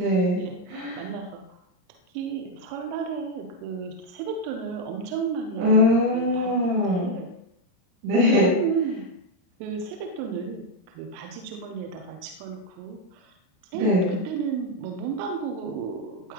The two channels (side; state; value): left; late; 39 ms